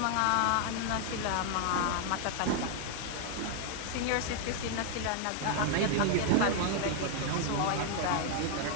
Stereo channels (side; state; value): both; different; correlation 0.00